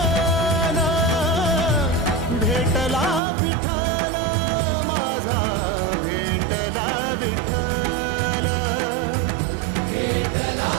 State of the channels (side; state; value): left; drops out; at 3.2 s